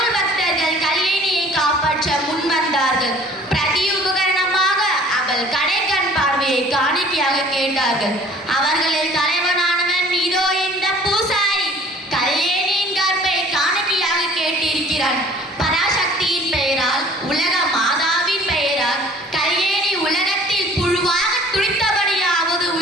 பக்தர்கள் கல்யாணியை காப்பாற்ற முன்வந்தார்கள். பிரதி உபகரணமாக அவள் கடைக்கண் பார்வையை காணிக்கையாக கேட்டார்கள். அவர்களில் தலைவனானவன் இதோ இந்த பூசாரி. கல்யாணியின் கற்பை காணிக்கையாக கேட்டிருக்கிறான். பராசக்தியின் பெயரால், உலக மாதாவின் பெயரால் கல்யாணி உலகத்தில் புழுவாக துடித்தபடியாவது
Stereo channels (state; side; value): normal; both; correlation 0.51